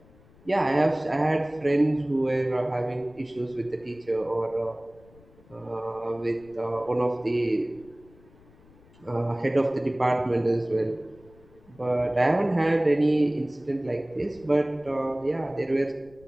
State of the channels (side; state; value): left; noise; rumble, 26 dB below the sound